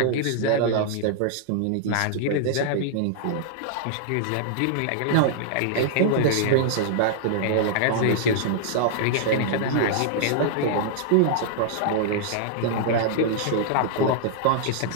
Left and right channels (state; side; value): different; both; correlation -0.01